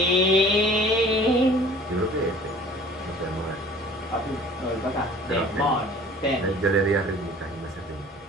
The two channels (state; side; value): normal; both; correlation 0.48